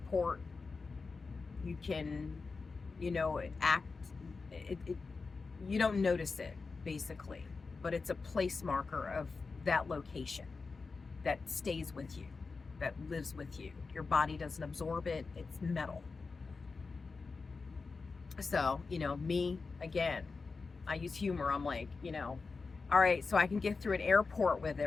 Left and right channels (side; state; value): right; quieter; 4.4 dB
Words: you can, you don't notice it, basically, but it's a place marker of that location that stays with you, that lives with you. Your body doesn't absorb it, it's metal. So, me, again, I use humor. I'm like, all right, so I can get through an airport with